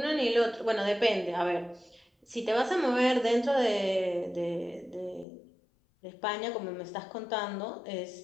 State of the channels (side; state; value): right; drops out; at 5.2 s